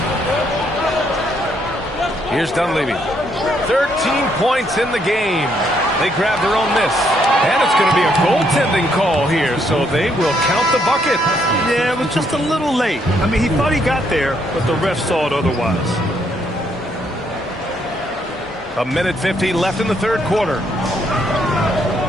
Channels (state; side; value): normal; both; correlation 0.72